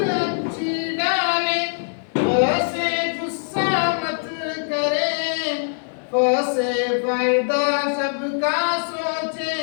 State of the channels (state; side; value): silent; right; digital silence